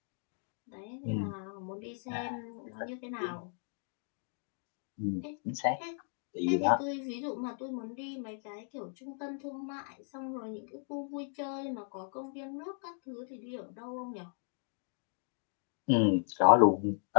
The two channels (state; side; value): silent; right; 54 dB below the other